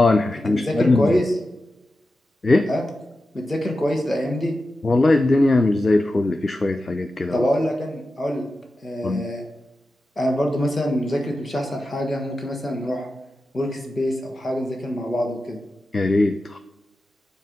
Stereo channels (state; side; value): normal; both; correlation 0.92